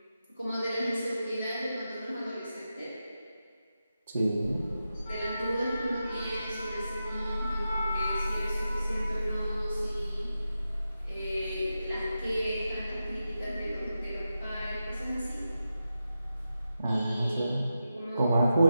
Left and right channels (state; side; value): inverted; both; correlation -0.90